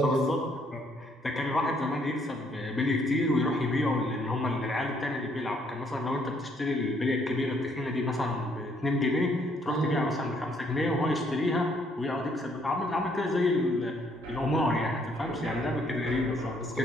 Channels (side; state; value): both; normal; correlation 0.68